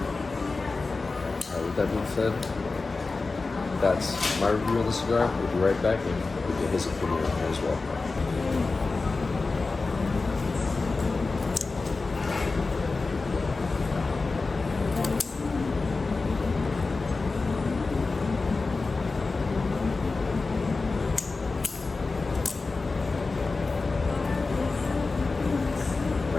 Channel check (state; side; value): quieter; right; 3.8 dB